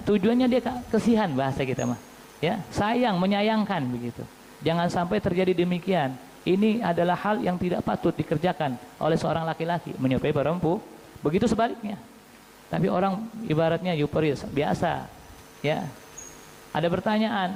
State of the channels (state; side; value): identical; both; correlation 1.00